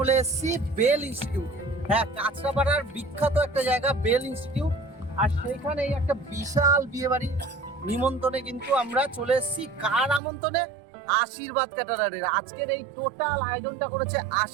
এসেছি বেল ইনস্টিটিউট। হ্যাঁ, কাঁচরাপাড়ার বিখ্যাত একটা জায়গা বেল ইনস্টিটিউট। আর সেইখানে একটা বিশাল বিয়ে বাড়ি নিমন্ত্রণে কিন্তু আমরা চলে এসেছি। কার আমন্ত্রণে? আশীর্বাদ ক্যাটারারের। আজকের এই টোটাল আয়োজনটা করেছে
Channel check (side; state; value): left; drops out; at 10.2 s